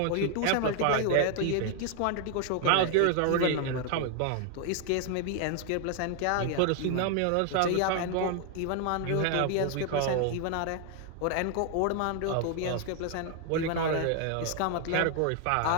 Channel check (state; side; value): different; both; correlation 0.00